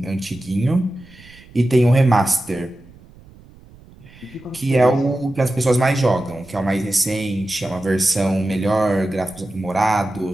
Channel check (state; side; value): noise; right; rumble, 23 dB below the sound